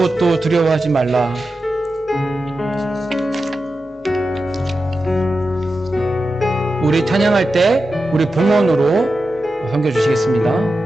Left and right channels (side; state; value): both; normal; correlation 0.91